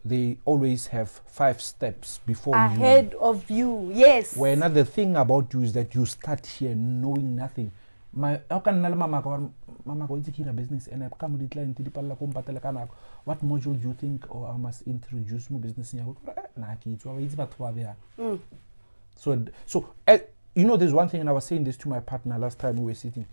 they always have 5 steps before ahead of you. Yes. Where another thing about you is that you start here knowing nothing. How can mama go into a business and I come with the client what module do you think or I must introduce my business in so you know, there's one thing, and I was saying this to my partner last time we were sitting,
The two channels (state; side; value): inverted; both; correlation -1.00